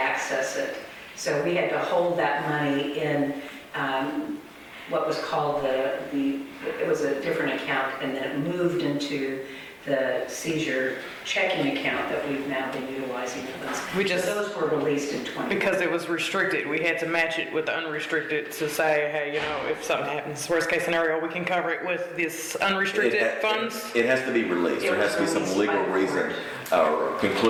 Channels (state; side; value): identical; both; correlation 1.00